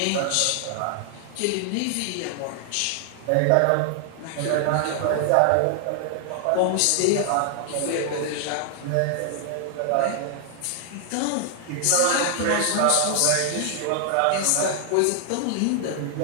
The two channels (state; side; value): different; both; correlation 0.00